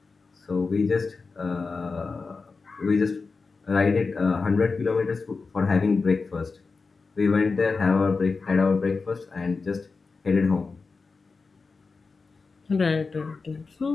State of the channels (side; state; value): right; quieter; 4.4 dB